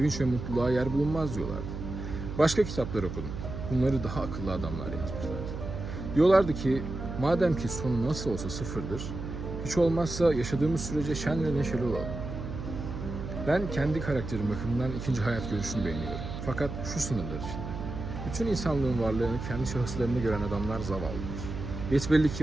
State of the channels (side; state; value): right; noise; hum, 7 dB below the sound